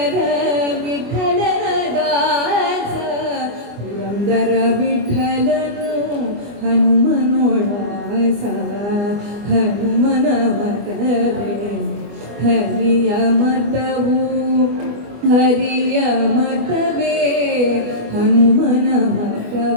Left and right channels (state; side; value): late; left; 25 ms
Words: ವಿಠಲನ ದಾಸ ಪುರಂದರ ವಿಠಲನು ಹನುಮನೋದಾಸ ಹನುಮನ ಮತವೇ ಹರಿಯ ಮತವು ಹರಿಯ ಮತವೇ ಹನುಮನ